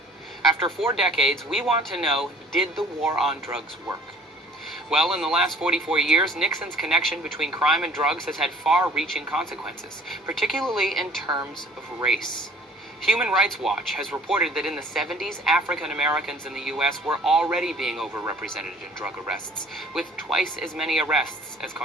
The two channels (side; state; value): both; normal; correlation 0.53